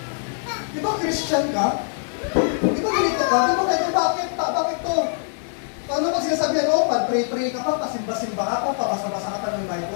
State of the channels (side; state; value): right; silent; digital silence